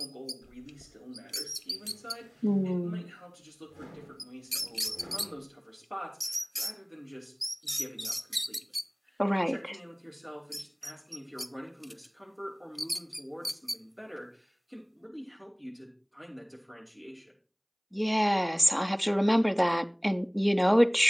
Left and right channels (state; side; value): identical; both; correlation 1.00